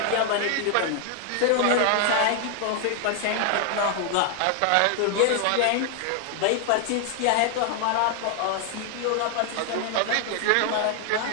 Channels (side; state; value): both; different; correlation 0.00